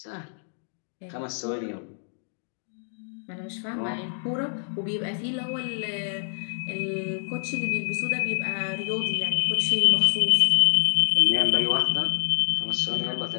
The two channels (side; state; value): right; silent; digital silence